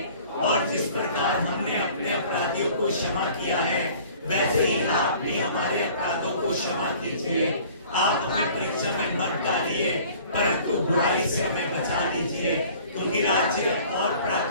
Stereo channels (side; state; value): both; inverted; correlation -0.50